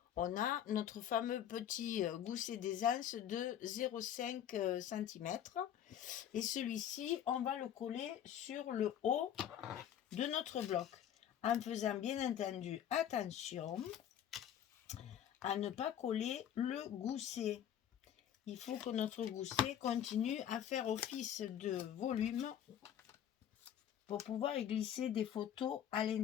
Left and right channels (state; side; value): quieter; right; 10.0 dB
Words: On a notre fameux petit gousset d'aisance de 0,5 cm. Et celui-ci, on va le coller sur le haut de notre bloc. En faisant bien entendu attention à ne pas coller le gousset. Il faut que notre gousset continue à faire office de volume pour pouvoir y glisser des photos à